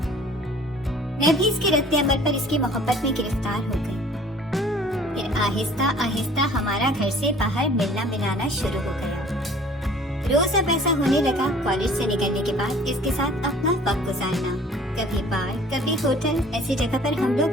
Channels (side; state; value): both; normal; correlation 0.51